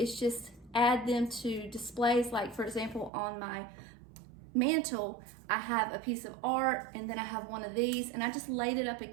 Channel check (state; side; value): drops out; left; at 3.1 s